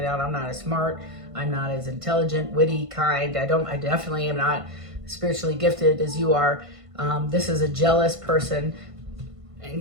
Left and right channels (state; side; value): late; left; 1.5 ms